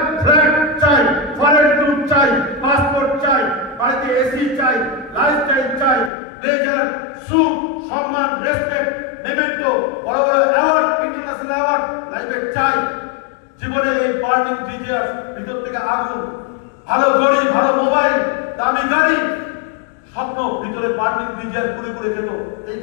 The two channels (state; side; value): drops out; right; at 6.1 s